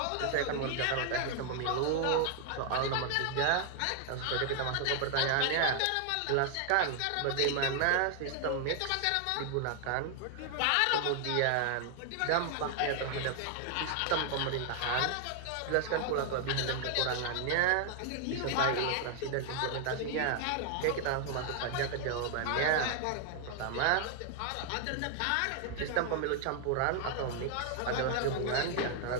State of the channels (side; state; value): both; different; correlation 0.00